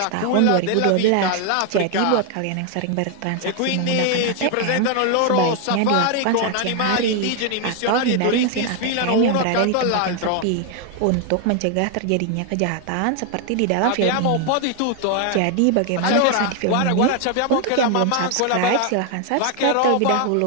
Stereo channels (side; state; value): both; different; correlation 0.01